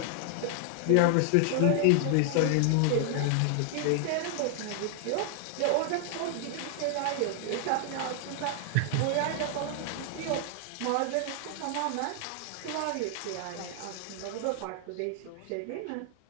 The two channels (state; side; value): different; both; correlation 0.00